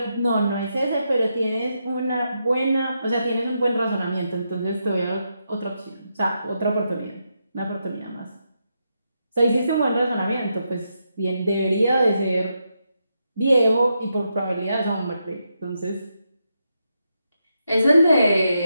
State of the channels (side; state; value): both; inverted; correlation -0.83